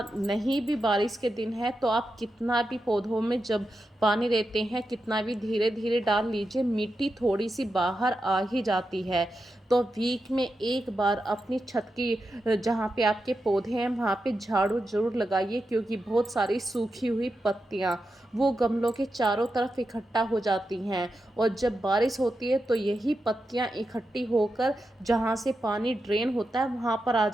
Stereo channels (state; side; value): normal; both; correlation 0.88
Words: नहीं भी बारिश के दिन है तो आप कितना भी पौधों में जब पानी देते हैं, कितना भी धीरे धीरे डाल लीजिए, मिट्टी थोड़ी सी बाहर आ ही जाती है। तो वीक में एक बार अपनी छत की जहाँ पे आपके पौधे हैं वहाँ पे झाड़ू जरूर लगाइए, क्योंकि बहुत सारी सूखी हुई पत्तियाँ वो गमलों के चारों तरफ इकट्ठा हो जाती हैं। और जब बारिश होती है तो यही पत्तियाँ इकट्ठी होकर जहाँ से पानी ड्रेन होता है वहाँ पर आ